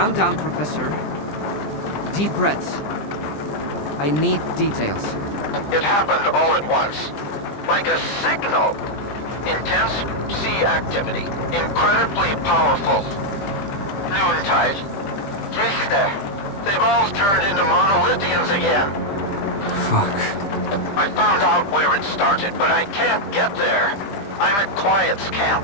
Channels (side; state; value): right; late; 20 ms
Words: down, Professor. Deep breaths. I need details. It happened all at once. Like a signal. Intense sea activity. Incredibly powerful. Noontide. Este. They've all turned into monolithians again. Fuck. I found out where it started, but I can't get there. I'm at Quiet's